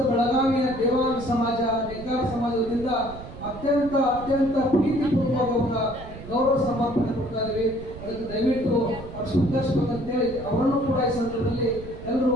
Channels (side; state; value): right; noise; rumble, 13 dB below the sound